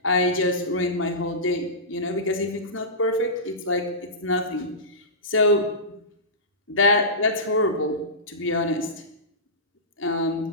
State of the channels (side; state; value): both; normal; correlation -0.19